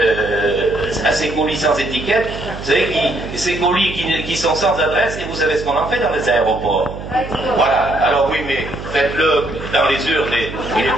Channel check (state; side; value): noise; right; hum, 11 dB below the sound